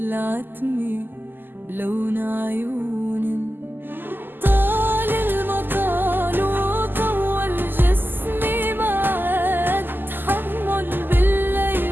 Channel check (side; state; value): left; late; 0.092 ms